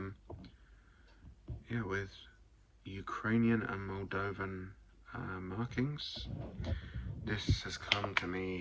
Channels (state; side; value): identical; both; correlation 1.00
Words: with Ukrainian and Moldovan markings. This has come to